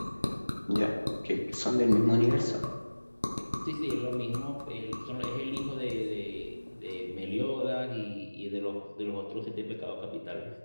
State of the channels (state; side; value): inverted; both; correlation -1.00